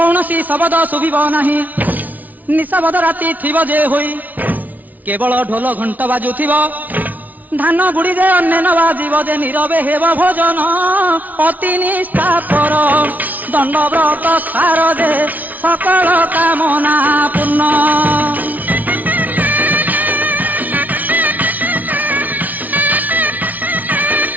शब्द शुभिब नाही निशब्द राति थिब जे होई केवल ढोल घंट बाजुथिब धान गुड़ी जे अन्य न बाजिब जे नीरवे हेब भोजन अति निष्ठापर दंड व्रत सार जे सकल कामना पूर्ण।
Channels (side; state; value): left; late; 0.077 ms